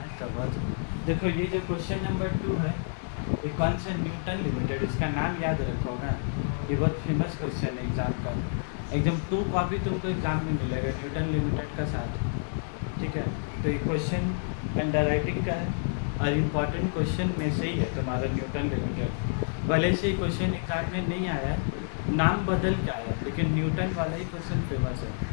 ये जो क्वेश्चन नंबर 2 है, ये कौन सा न्यूटन लिमिटेड, इसका नाम याद रखो ना। ये बहुत फेमस क्वेश्चन है एग्ज़ाम का। एकदम 2 कॉपी तुमको एग्ज़ाम में मिलेगा न्यूटन लिमिटेड का साथ। ठीक है, तो ये क्वेश्चन अंडर राइटिंग का है और इम्पॉर्टेंट क्वेश्चन में से ही है तुम्हारा न्यूटन लिमिटेड। भले से क्वेश्चन एग्ज़ाम में नहीं आया, नाम बदल के आया, लेकिन न्यूटन वाला ही क्वेश्चन फेमस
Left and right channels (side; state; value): right; silent; digital silence